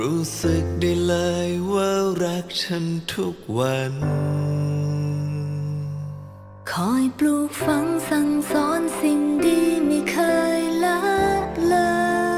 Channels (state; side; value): identical; both; correlation 1.00